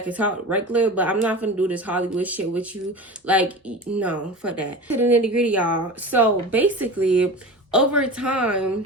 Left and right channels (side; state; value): both; normal; correlation 0.32